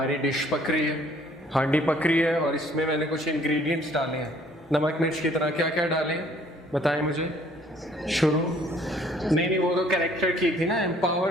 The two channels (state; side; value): normal; both; correlation 0.59